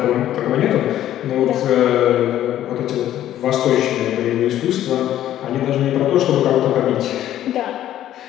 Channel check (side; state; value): right; quieter; 12.3 dB